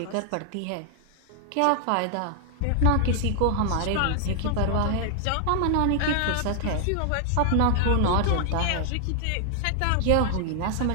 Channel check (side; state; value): both; different; correlation 0.00